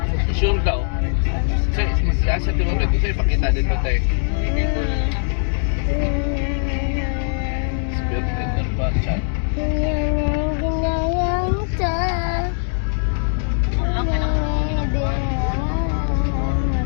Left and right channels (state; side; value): silent; right; 65 dB below the other